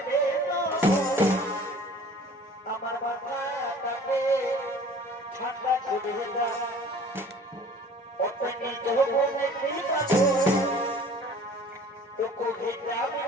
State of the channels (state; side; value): normal; both; correlation 0.48